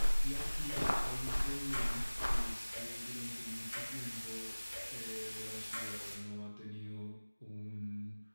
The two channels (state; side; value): inverted; both; correlation -1.00